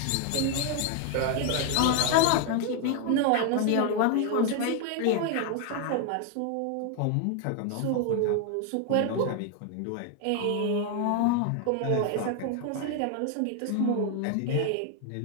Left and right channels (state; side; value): different; both; correlation 0.00